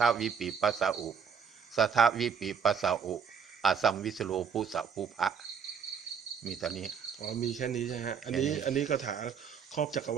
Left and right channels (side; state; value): left; quieter; 6.8 dB